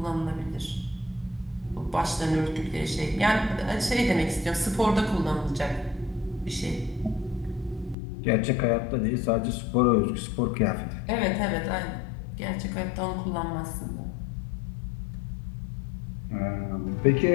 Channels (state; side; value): drops out; right; at 8.0 s